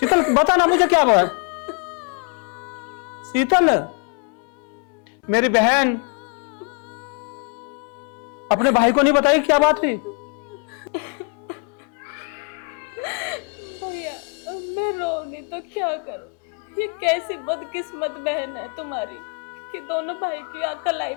बता ना मुझे क्या हुआ? शीतल मेरी बहन, अपने भाई को नहीं बताई क्या बात हुई? भैया अब मैं रो नहीं तो क्या करूं? ये कैसी बदकिस्मत बहन है तुम्हारी कि दोनों भाई की कलाई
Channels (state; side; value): quieter; right; 37.0 dB